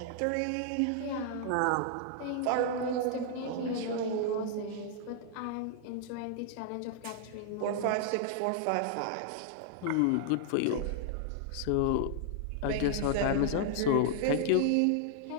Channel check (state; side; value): different; both; correlation -0.01